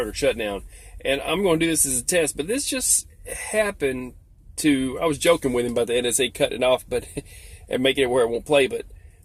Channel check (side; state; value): both; identical; correlation 1.00